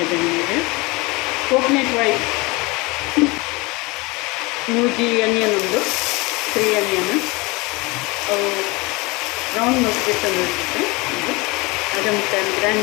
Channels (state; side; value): quieter; right; 24.7 dB